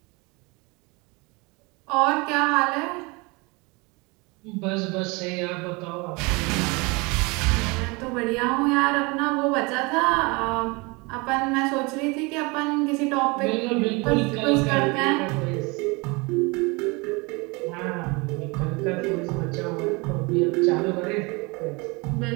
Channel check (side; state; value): left; quieter; 27.1 dB